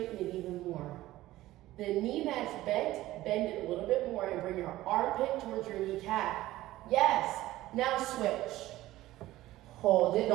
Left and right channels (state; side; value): quieter; left; 16.1 dB